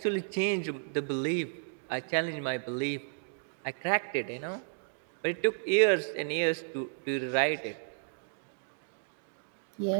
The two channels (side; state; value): left; silent; digital silence